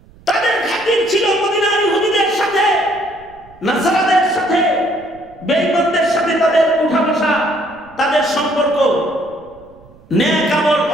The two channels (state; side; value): noise; right; rumble, 26 dB below the sound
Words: তাদের খাতির ছিল মদিনার ইহুদিদের সাথে, নাসারাদের সাথে, বেঈমানদের সাথে তাদের উঠা বসা, তাদের সম্পর্ক। নেক আমল